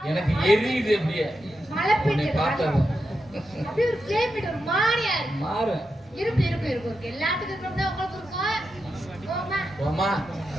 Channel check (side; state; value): both; normal; correlation 0.87